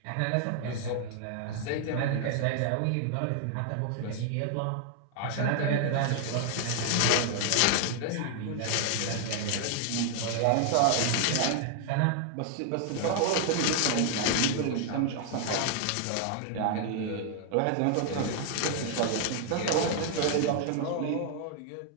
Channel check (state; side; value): different; both; correlation 0.00